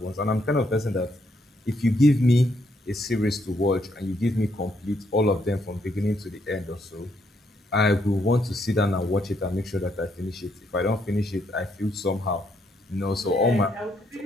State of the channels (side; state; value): both; normal; correlation 0.74